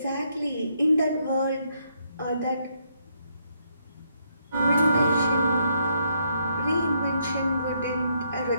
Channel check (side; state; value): both; inverted; correlation -0.74